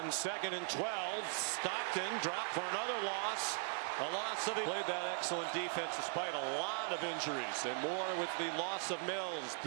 2nd and 12, Stockton dropped for another loss. A loss of played that excellent defense despite a lot of injuries, and more with the loss of Mills.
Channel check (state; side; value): silent; left; 51 dB below the other